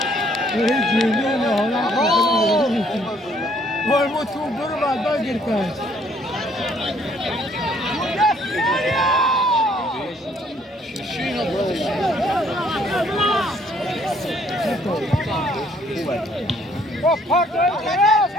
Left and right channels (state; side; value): normal; both; correlation 0.64